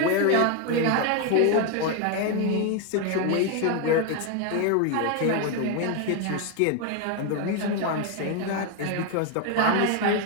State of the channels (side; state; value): both; different; correlation 0.02